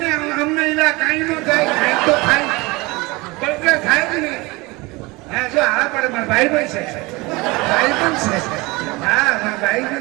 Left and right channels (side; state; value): left; quieter; 23.7 dB